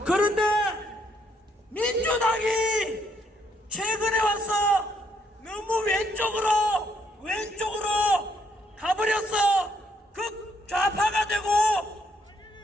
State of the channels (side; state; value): both; normal; correlation 0.72